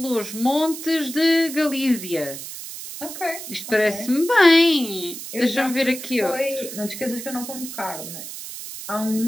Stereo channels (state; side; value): noise; right; hiss, 10 dB below the sound